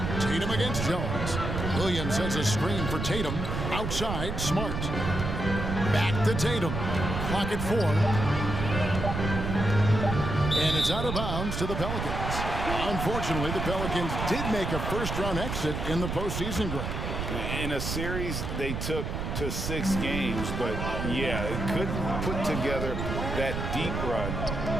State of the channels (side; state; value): right; noise; rumble, 3 dB below the sound